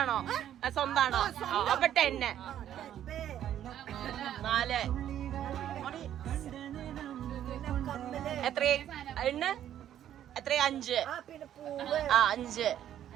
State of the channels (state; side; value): quieter; left; 11.0 dB